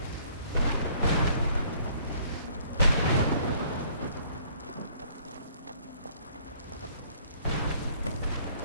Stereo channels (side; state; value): both; inverted; correlation -0.59